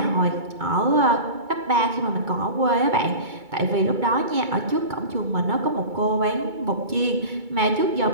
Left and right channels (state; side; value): late; left; 2.2 ms